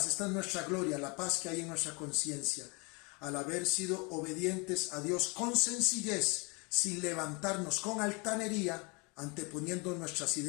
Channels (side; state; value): right; quieter; 29.8 dB